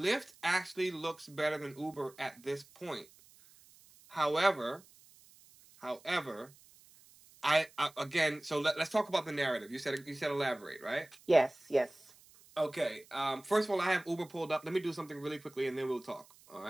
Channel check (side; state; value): right; noise; hiss, 25 dB below the sound